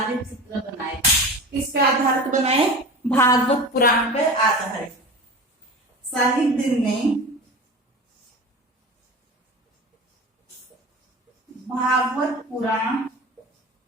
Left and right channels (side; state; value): both; normal; correlation 0.32